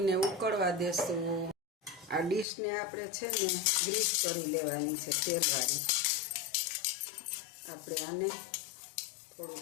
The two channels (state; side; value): drops out; right; at 2.5 s